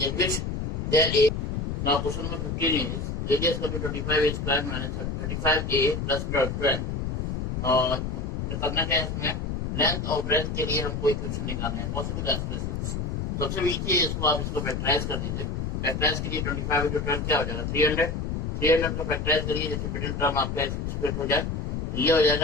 which there is. Now question number 15 is radius equal to 25a square minus 35a plus 12. और करना क्या है इसमें, length और ब्रेथ के लिए हमको इक्वेशन निकालना है, पॉसिबल एक्सप्रेशंस। सबसे ईजी है, इसको आप इसको फैक्टराइज कर दीजिए। फैक्टराइज के लिए 25 into 12 क्या हो जाएगा 300। 300 का फैक्टराइज करिए, जैसे मिडिल टर्म आपका स्प्लिट हो जाए, ये हो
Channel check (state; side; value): noise; left; rumble, 2 dB below the sound